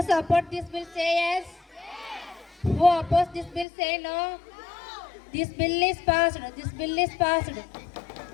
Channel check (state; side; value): drops out; right; at 3.7 s